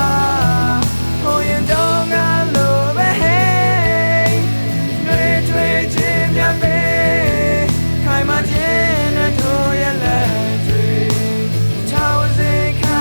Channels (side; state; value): both; inverted; correlation -1.00